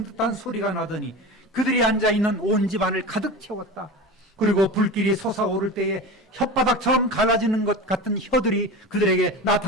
듯한 소리가 나더니 그들이 앉아있는 온 집안을 가득 채웠다. 그리고 불길이 솟아오를 때에 혓바닥처럼 갈라지는 것 같은 혀들이 그들에게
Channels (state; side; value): normal; both; correlation 0.30